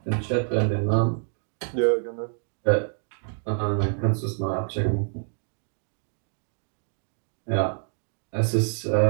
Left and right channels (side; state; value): left; silent; 56 dB below the other